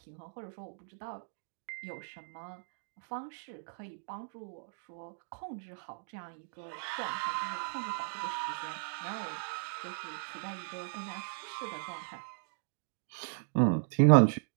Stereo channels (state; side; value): silent; left; digital silence